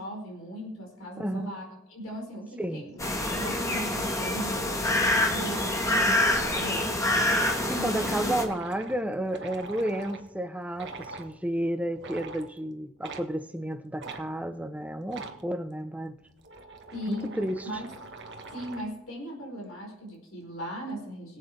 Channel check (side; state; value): both; normal; correlation 0.52